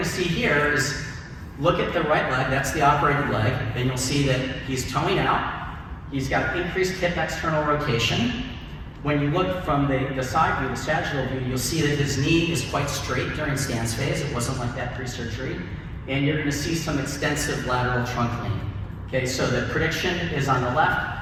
to see here is look at the right leg, that's the operated leg, and you'll see that he's toeing out. He's got increased hip external rotation. When you look from the side view, the sagittal view, you'll see that his knee is quite straight during stance phase. It wasn't like that pre-surgery. And you're going to see some extensive lateral trunk lean. Okay, so the prediction is on the left,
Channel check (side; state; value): both; identical; correlation 1.00